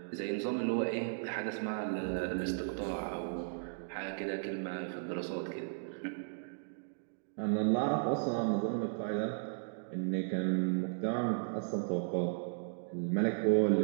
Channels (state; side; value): silent; left; digital silence